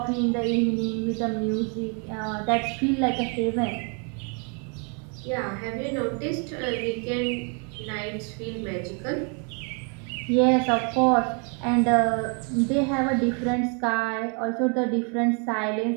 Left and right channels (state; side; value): quieter; left; 37.5 dB